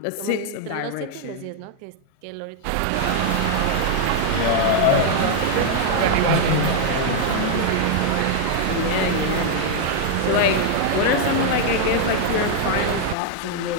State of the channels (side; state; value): both; different; correlation 0.00